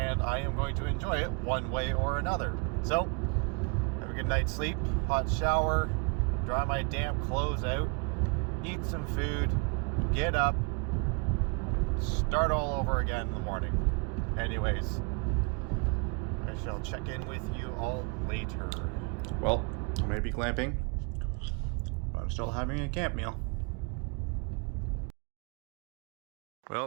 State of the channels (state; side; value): quieter; left; 33.1 dB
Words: I am going to enjoy it one way or another. So, have a good night's sleep, hot shower, dry my damp clothes out, eat some food, get up, start all over again in the morning. Anyways, I shall check in with you all later. Well, I may be glamping, but I'm still having a camp meal.